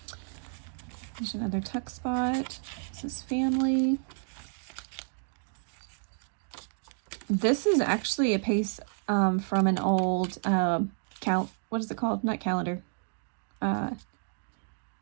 There's another tuck spot. This is family. This is actually a piece from an old what is it called? Not calendar.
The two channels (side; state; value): left; silent; digital silence